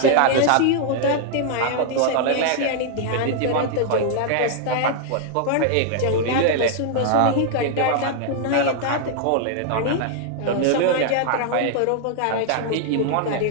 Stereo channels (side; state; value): both; different; correlation -0.01